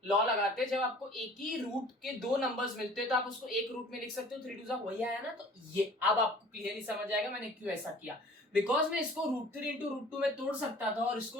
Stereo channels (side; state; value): both; normal; correlation 0.49